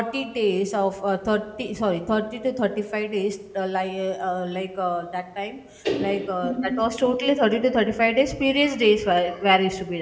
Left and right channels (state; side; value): identical; both; correlation 1.00